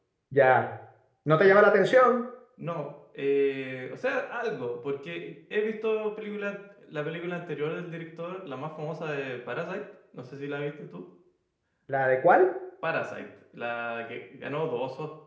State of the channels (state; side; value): identical; both; correlation 1.00